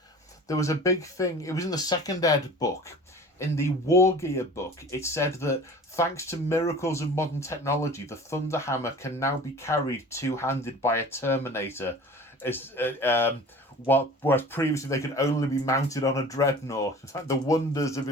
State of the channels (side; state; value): both; normal; correlation 0.42